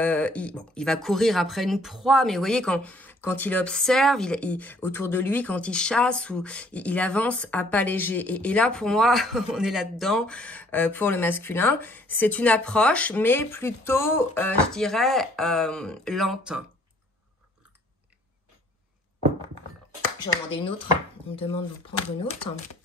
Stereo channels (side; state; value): both; normal; correlation 0.60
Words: va courir après une proie, mais vous voyez quand il observe, autour de lui, quand il chasse, ou il avance à pas léger. Et là, pour moi, on est là-dedans pour le masculin. C'est une approche, mais plutôt, je dirais, lente. Je vais en demander une autre. On me demande de prendre une autre.